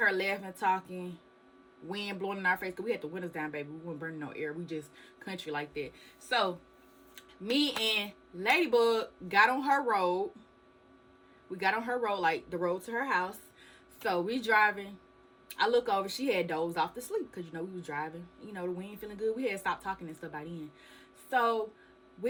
her laughing, talking, wind blowing in our face, because we had the windows down, baby. We weren't burning no air. We just country like that. So me and Ladybug got on her road. We got on her road, like the road to her house. So we driving. I look over, she had dozed off to sleep because, you know, we was driving. You know, the wind feeling good. We had stopped talking and stuff by then. So,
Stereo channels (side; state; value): both; identical; correlation 1.00